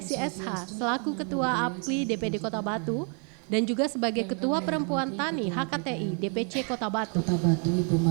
SH selaku Ketua APKLI DPD Kota Batu dan juga sebagai Ketua Perempuan Tani HKTI DPC Kota Batu. Kota Batu, Ibu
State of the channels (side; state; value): left; quieter; 39.8 dB